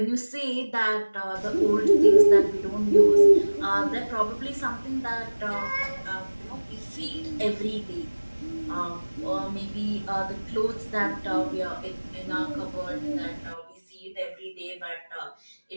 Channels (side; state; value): both; inverted; correlation -1.00